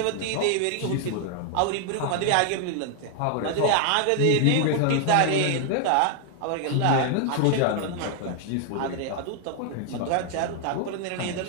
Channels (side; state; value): both; different; correlation 0.00